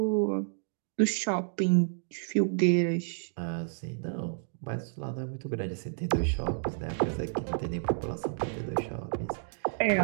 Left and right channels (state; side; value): silent; left; 57 dB below the other